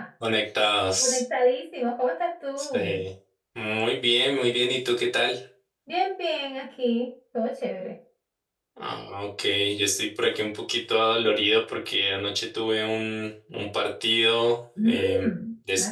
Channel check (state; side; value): identical; both; correlation 1.00